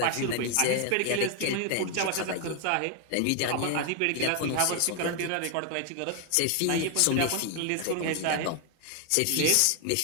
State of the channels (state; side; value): different; both; correlation 0.00